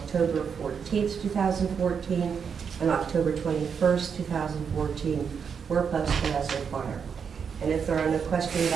14, 2014, and October 21st, 2014 were posted as required. And if there are no questions,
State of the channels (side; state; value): left; quieter; 6.6 dB